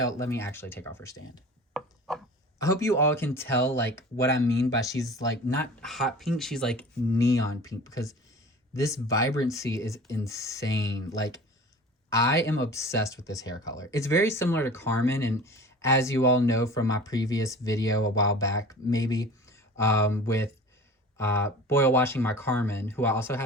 Let me actually take off her stand. I hope you all can tell like what I mean by she's like not hot pink, she's like neon pink because this vibrancy is insane. Like I am obsessed with this hair color. It's very similar to Carmen, and as you all know from my previous video a while back, maybe with boil washing my Carmen, who I also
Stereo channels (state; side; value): normal; both; correlation 0.40